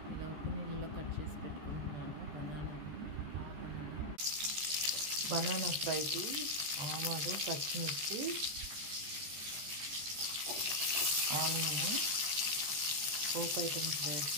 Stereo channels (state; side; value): late; left; 14 ms